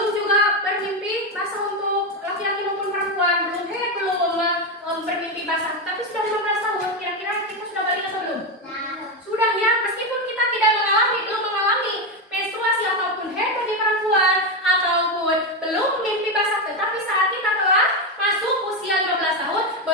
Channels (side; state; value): both; normal; correlation 0.10